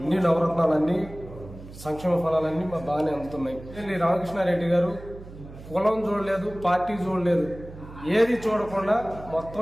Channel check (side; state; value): right; noise; hum, 16 dB below the sound